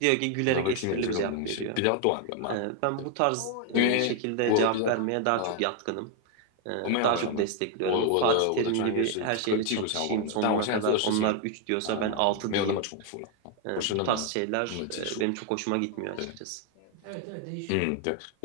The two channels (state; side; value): different; both; correlation 0.01